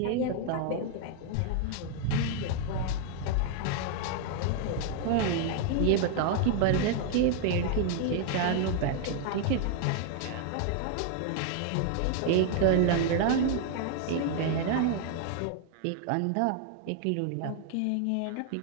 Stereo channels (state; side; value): different; both; correlation 0.00